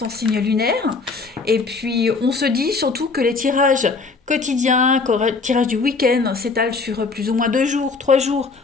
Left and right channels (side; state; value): right; quieter; 4.3 dB